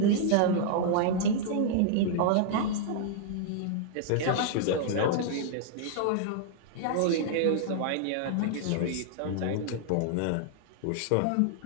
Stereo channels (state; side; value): different; both; correlation -0.01